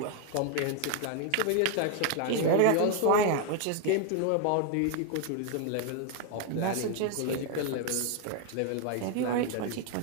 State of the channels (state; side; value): different; both; correlation 0.00